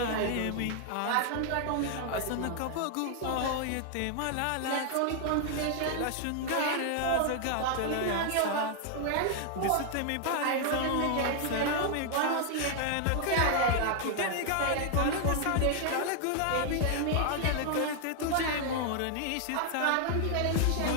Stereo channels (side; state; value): both; different; correlation 0.00